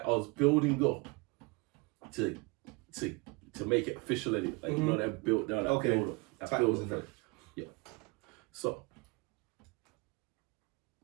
I was building up to make it official. Anyway. Like you know that build down that build up. That builds in there. Yeah. So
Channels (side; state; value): left; quieter; 27.7 dB